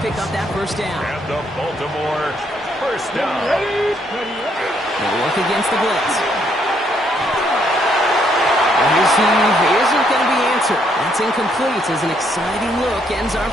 pick up that first down. And the Baltimore first down. They'll work against the blitz. His heave isn't going to be answered. That's incomplete as an exciting look ends our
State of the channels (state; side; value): normal; both; correlation 0.71